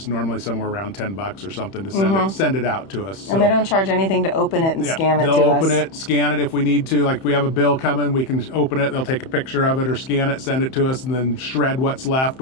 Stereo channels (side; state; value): right; late; 31 ms